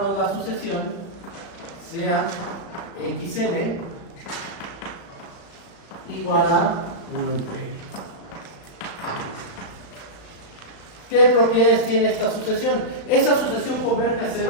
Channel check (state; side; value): late; right; 35 ms